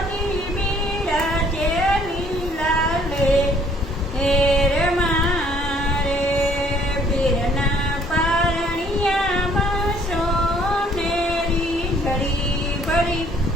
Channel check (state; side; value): normal; both; correlation 0.61